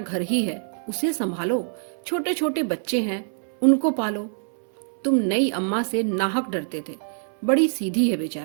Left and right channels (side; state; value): left; silent; 62 dB below the other